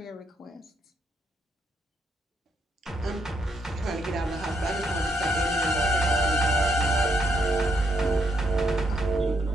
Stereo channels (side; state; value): both; normal; correlation 0.76